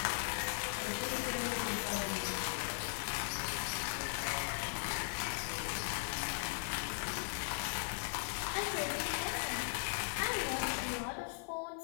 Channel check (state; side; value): silent; right; 52 dB below the other